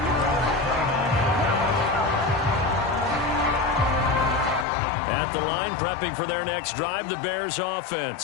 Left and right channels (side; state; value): right; drops out; at 4.7 s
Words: At the line, prepping for their next drive, the Bears